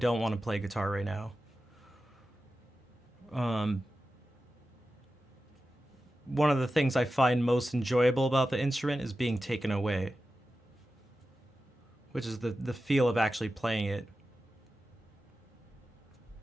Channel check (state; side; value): normal; both; correlation 0.93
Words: want to play guitar right now. Um, One of the things I find most enjoyable about the instrument is being taken away, which is the feel of actually playing it.